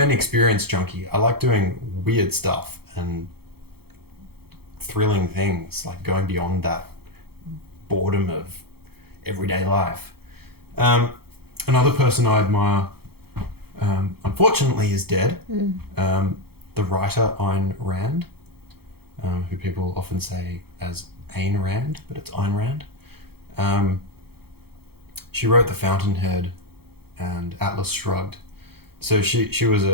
experience junkie. I like doing weird stuff and thrilling things, like going beyond that boredom of everyday life. Another person I admire, unfortunately, is dead. The writer Ayn Rand, who people often say as Ayn Rand, but it's Ayn Rand. She wrote The Fountainhead and Atlas Shrugged. So she was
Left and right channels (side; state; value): left; late; 0.96 ms